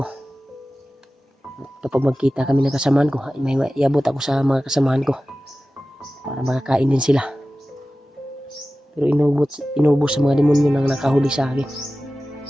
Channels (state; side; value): normal; both; correlation 0.96